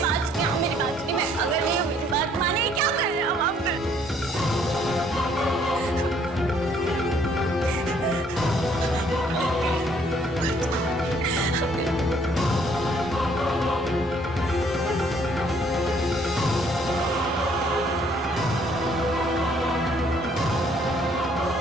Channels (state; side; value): normal; both; correlation 0.64